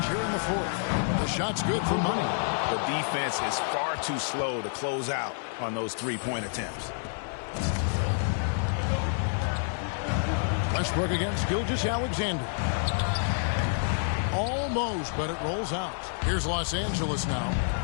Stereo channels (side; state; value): right; silent; 59 dB below the other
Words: here in the 4th. The shot's good for Money. The defense is far too slow to close out on those three-point attempts. Westbrook against Gilgeous-Alexander. Almost, but it rolls out. Here's Los Angeles now.